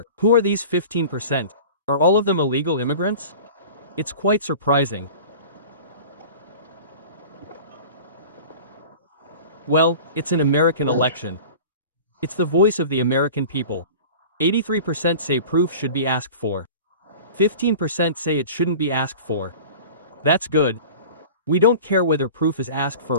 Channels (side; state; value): both; inverted; correlation -0.39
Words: Who are these 15%? Are all of them illegal immigrants? It's quite surprising. Well, it's an American election. It's the voice of the American people. 83% say proof should be asked for. 15% say it shouldn't be asked for. That's good. We don't care whether proof is asked for